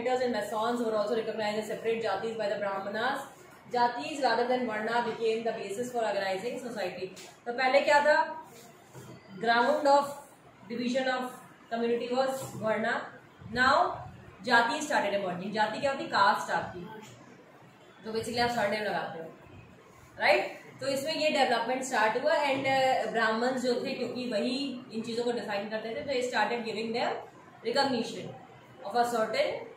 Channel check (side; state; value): both; identical; correlation 1.00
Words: and masons were also recognized as separate jatis by the brahmanas. Jatis rather than varna became the basis for organizing society. तो पहले क्या था? Ground of division of community was varna. Now jati started emerging. जाति क्या होती? Cast आपकी, तो basically आप सरनेम लगाते हो, राइट? तो इसमें ये डेवलपमेंट स्टार्ट हुआ एंड ब्राह्मण्स जो थे, क्योंकि वही इन चीजों को डिफाइन करते थे, तो ये started giving them recognition of a